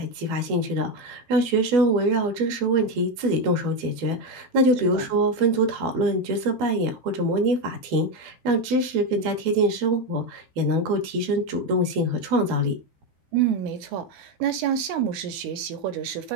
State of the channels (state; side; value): late; left; 12 ms